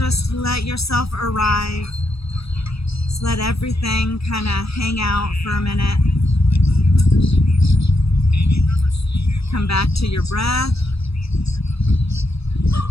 let yourself arrive. Just let everything kind of hang out for a minute. Come back to your breath.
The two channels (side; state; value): right; late; 0.77 ms